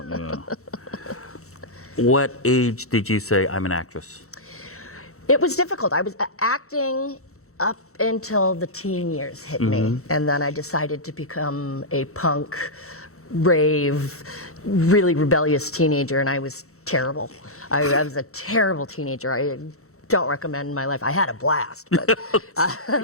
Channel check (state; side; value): late; right; 0.64 ms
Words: You know. What age did you say, I'm an actress? It was difficult. I was acting up until the teen years hit me. And then I decided to become a punk, rave, really rebellious teenager, and I was terrible. I was a terrible teenager. I don't recommend my life. I had a blast, but I